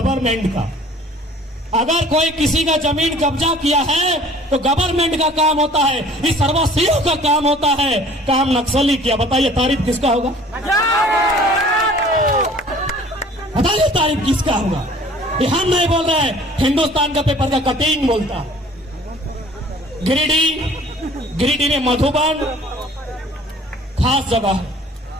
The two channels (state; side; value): normal; both; correlation 0.50